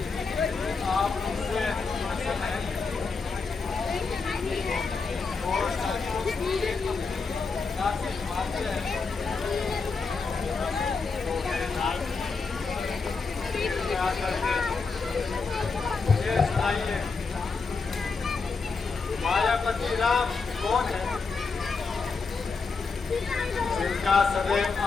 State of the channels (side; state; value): right; quieter; 4.6 dB